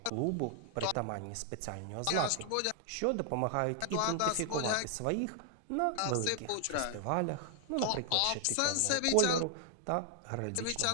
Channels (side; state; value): both; different; correlation 0.00